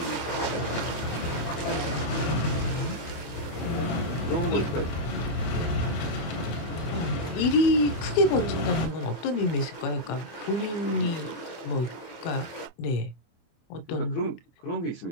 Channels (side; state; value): right; late; 24 ms